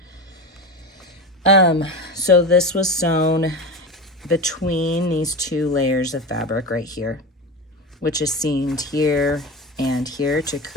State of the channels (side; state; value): both; normal; correlation 0.24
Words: So this was sewn between these two layers of fabric right here, which is seamed here and here to